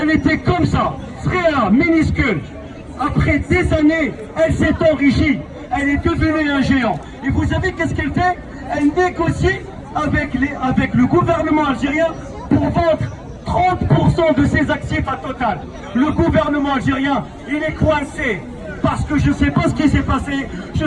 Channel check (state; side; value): identical; both; correlation 1.00